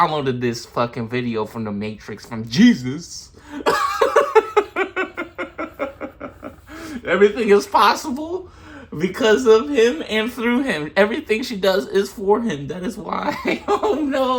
this fucking video from the Matrix from Jesus. Everything is possible because of him and through him. Everything she does is for him. That is why. Oh,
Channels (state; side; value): identical; both; correlation 1.00